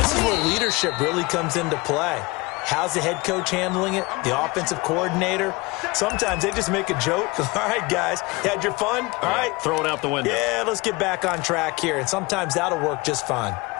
is where leadership really comes into play. How's the head coach handling it? The offensive coordinator? Sometimes they just make a joke. All right, guys, you had your fun? All right. Throw it out the window. Yeah, let's get back on track here. And sometimes that'll work just fine.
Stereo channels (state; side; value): quieter; right; 24.3 dB